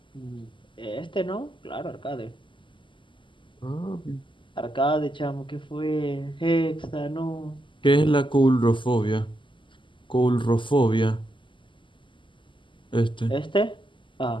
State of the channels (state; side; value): late; right; 0.24 ms